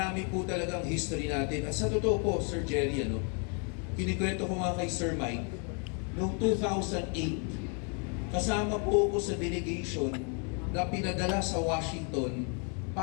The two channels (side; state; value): right; quieter; 38.7 dB